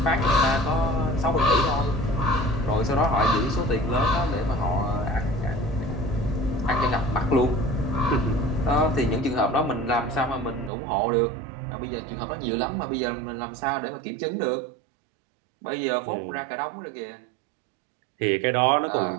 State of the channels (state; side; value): drops out; left; at 10.7 s